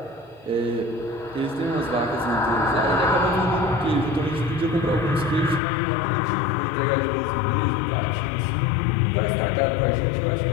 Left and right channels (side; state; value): right; drops out; at 5.6 s